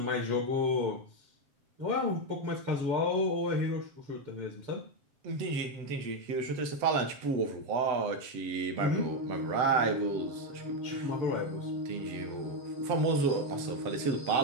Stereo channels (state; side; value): late; left; 7.4 ms